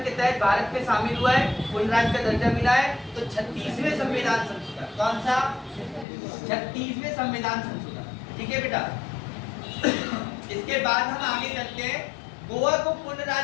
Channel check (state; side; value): drops out; right; at 6.1 s